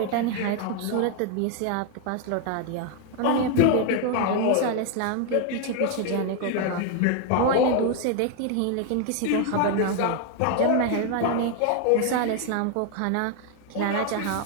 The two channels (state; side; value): different; both; correlation 0.01